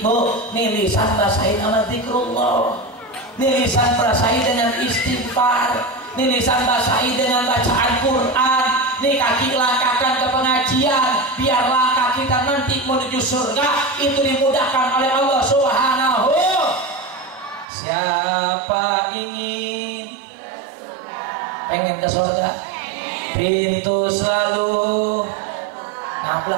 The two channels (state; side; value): drops out; left; at 17.7 s